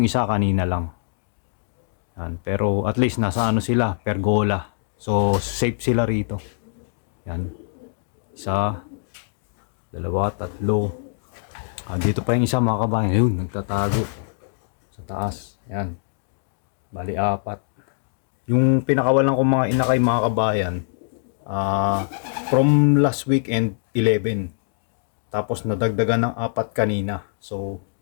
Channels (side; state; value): right; silent; digital silence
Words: isa kanina lang. Yan. Pero at least nasa sila, pergola. So safe sila rito. Yan. Isa, dalawa, tatlo. Dito pa yung isa mga kabayan. Yun, nagtatago sa taas. Ayan. Bali, 4. Yung pinakawalan kong mga inakay mga kabayan, from last weekend, 11. Tapos nadagdagan ng 4 kanina. So,